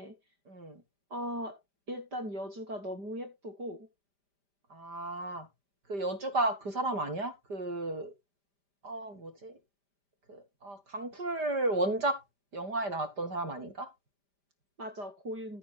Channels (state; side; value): late; left; 5.0 ms